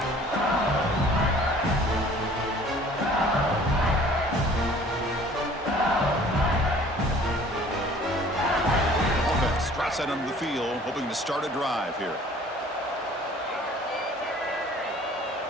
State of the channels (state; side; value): normal; both; correlation 0.51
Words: Outside under the field, hoping to start a drive here.